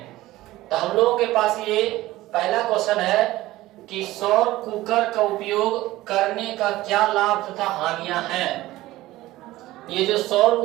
तो हम लोगों के पास ये पहला क्वेश्चन है कि सौर कुकर का उपयोग करने का क्या लाभ तथा हानियां हैं। ये जो सौर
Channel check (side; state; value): left; quieter; 17.0 dB